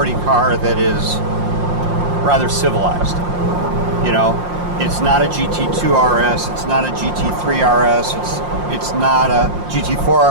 car that is rather civilized. It's not a GT2 RS, it's not a GT3 RS, it's not a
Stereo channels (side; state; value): left; late; 5.7 ms